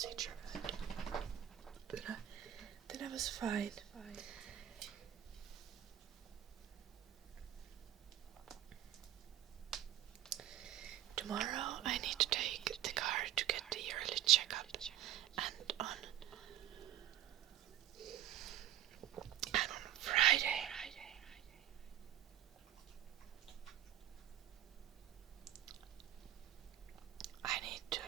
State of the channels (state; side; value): quieter; left; 12.4 dB